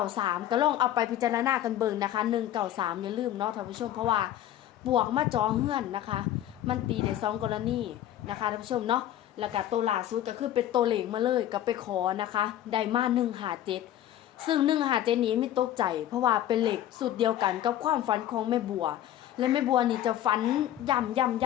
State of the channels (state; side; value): quieter; right; 12.2 dB